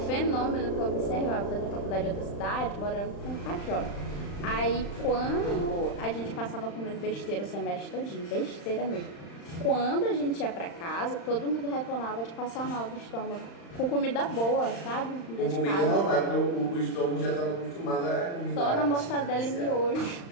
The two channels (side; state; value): right; late; 35 ms